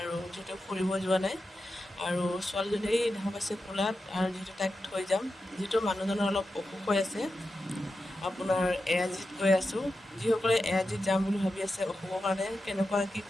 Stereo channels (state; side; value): normal; both; correlation 0.90